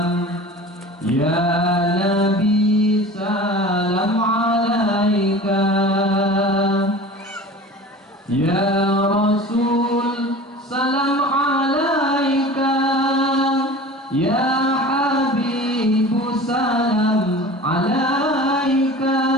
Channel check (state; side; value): normal; both; correlation 0.39